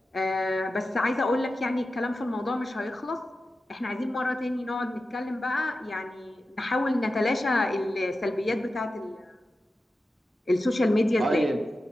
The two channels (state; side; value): normal; both; correlation 0.93